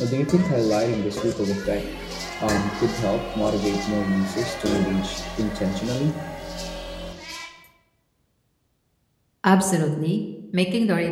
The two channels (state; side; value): identical; both; correlation 1.00